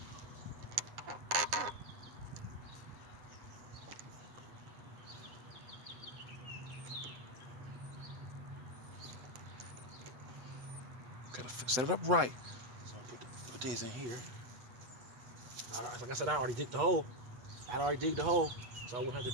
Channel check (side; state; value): left; late; 7.9 ms